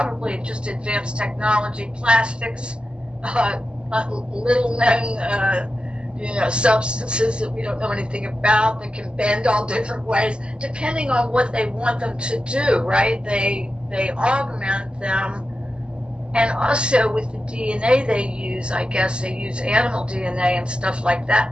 just advanced technology, plastics, little known substances that we don't know anything about, that can bend all different ways depending on what they want them to do, right? They augment them. And also with the DNA they use, I guess they use animal DNA and stuff like that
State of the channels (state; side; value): late; left; 0.051 ms